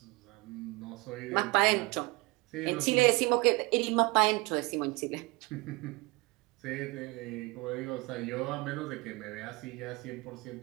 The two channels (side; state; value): left; quieter; 24.4 dB